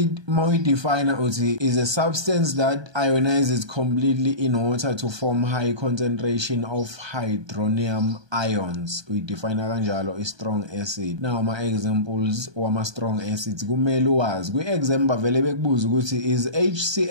mawuyidefine uthi is a substance that ionizes completely in water to form high concentration of hydronium ions. Uyidefine kanjalo i-strong acid. Now ama-examples wama-strong acids kumele uwazi. Kwi-exam bavele bekubuza ukuthi is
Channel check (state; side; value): late; left; 1.2 ms